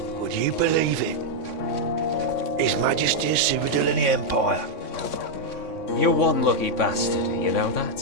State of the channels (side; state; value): right; late; 3.6 ms